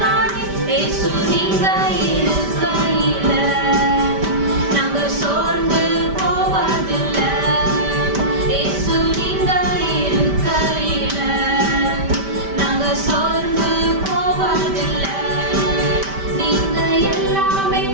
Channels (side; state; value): left; late; 5.1 ms